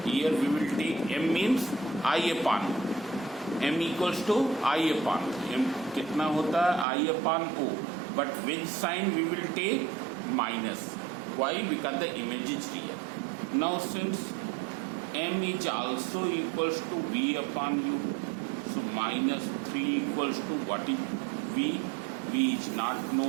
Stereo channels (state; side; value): drops out; left; at 6.9 s